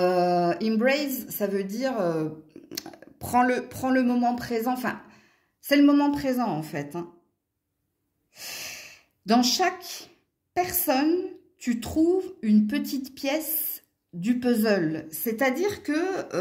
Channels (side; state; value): both; identical; correlation 1.00